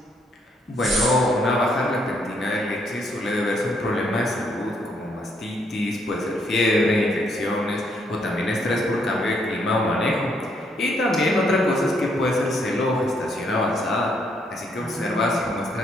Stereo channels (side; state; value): both; normal; correlation 0.72